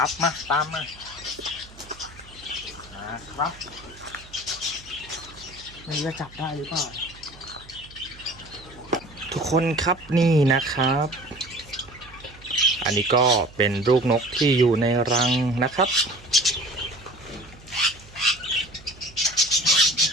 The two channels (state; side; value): noise; right; hum, 21 dB below the sound